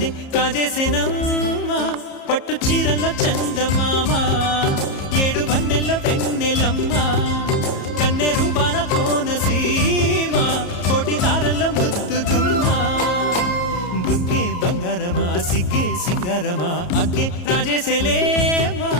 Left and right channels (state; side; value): late; right; 34 ms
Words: కాజేసేనమ్మా పట్టు చీరల్లో చందమామా ఏడు వన్నెల్లో వెన్నెలమ్మా కన్నె రూపాన కోనసీమ కోటి తారల్లో ముద్దుదుమ్మా బుగ్గే బంగారమా సిగ్గే సింగారమా అగ్గే రాజేసేలేమా